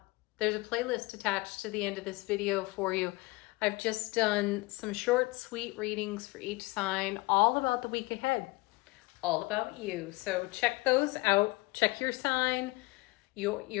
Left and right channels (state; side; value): quieter; right; 23.1 dB